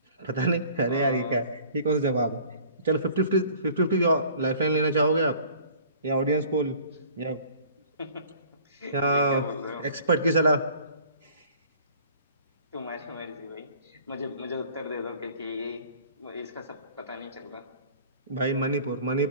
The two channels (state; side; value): inverted; both; correlation -0.50